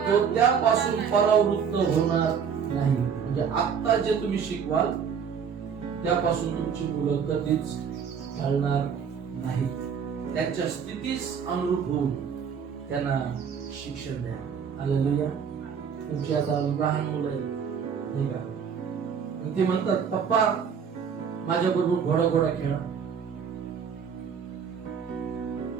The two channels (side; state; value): left; quieter; 7.0 dB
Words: त्यापासून परावृत्त होणार नाही. म्हणजे आता जे तुम्ही शिकवाल त्यापासून तुमची मुलं कधीच ढळणार नाही. त्यांच्या स्थितीस अनुरूप होऊन त्यांना शिक्षण द्या. हालेलुया. तुमची आता लहान मुलं आहेत नाही का, ते म्हणतात पप्पा माझ्या बरोबर घोडा खेळा.